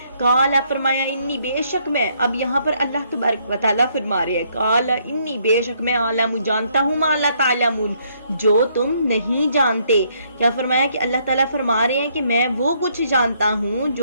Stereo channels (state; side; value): inverted; both; correlation -0.69